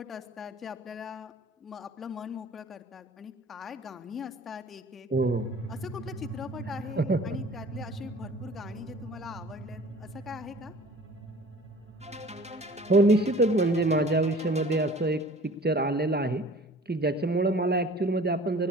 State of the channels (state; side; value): normal; both; correlation 0.47